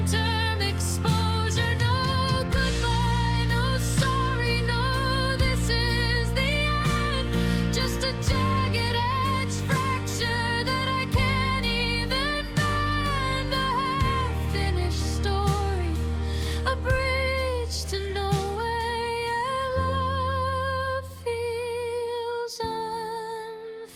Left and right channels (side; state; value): both; identical; correlation 1.00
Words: exposure. No goodbye, no sorry, no this is the end. Just a